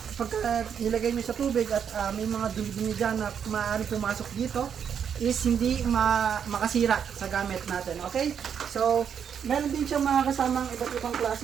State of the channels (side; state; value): left; quieter; 7.8 dB